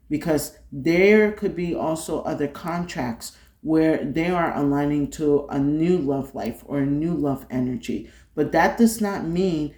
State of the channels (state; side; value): identical; both; correlation 1.00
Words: because there could be also other contracts where they are aligning to a new love life or a new love energy. But that does not mean